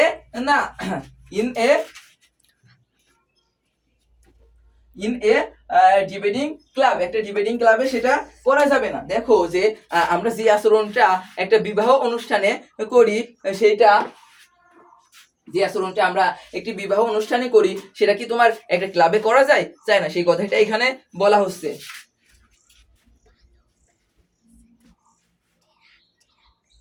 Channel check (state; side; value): identical; both; correlation 1.00